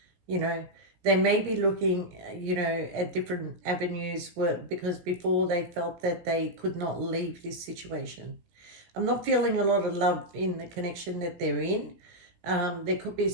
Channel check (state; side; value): late; left; 17 ms